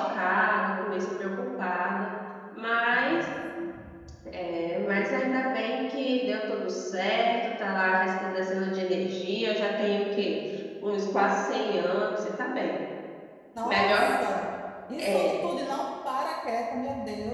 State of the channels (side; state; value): both; identical; correlation 1.00